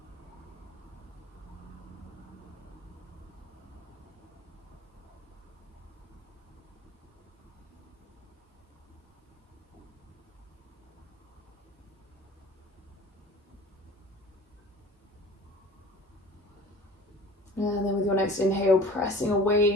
And then with your next inhale, pressing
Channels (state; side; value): normal; both; correlation 0.43